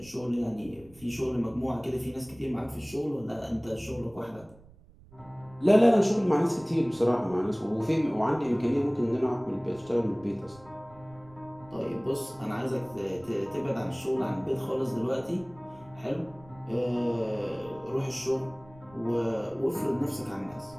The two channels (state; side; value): noise; right; rumble, 24 dB below the sound